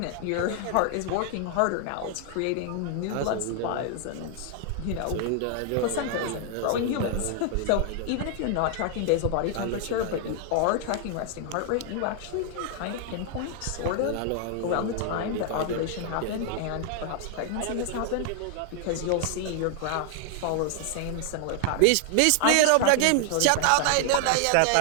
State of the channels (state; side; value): different; both; correlation 0.00